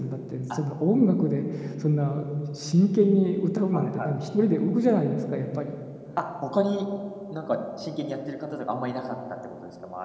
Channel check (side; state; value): both; identical; correlation 1.00